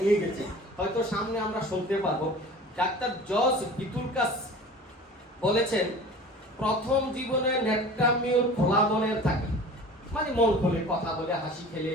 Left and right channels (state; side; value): normal; both; correlation 0.41